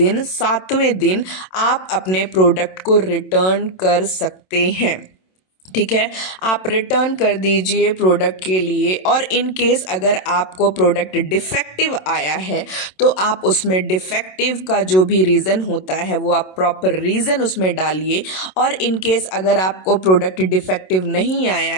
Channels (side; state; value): right; late; 27 ms